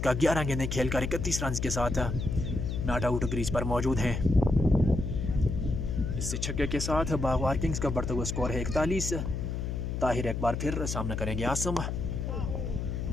का। 11 गेंदें खेलकर 31 रन के साथ नॉट आउट क्रीज पर मौजूद हैं। इस छक्के के साथ बागवार किंग्स का बढ़ता हुआ स्कोर है 41। ताहिर एक बार फिर सामना करेंगे आसम।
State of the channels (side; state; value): left; noise; hum, 3 dB below the sound